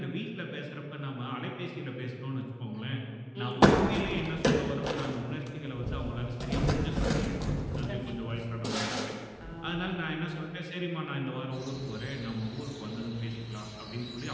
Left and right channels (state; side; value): identical; both; correlation 1.00